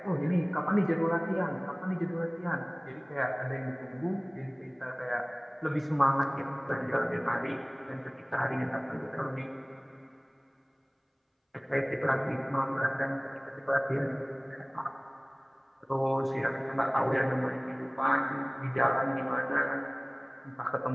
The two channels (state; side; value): identical; both; correlation 1.00